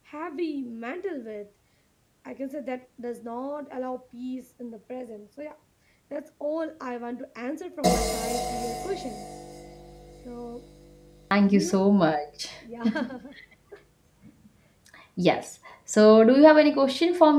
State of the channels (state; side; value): identical; both; correlation 1.00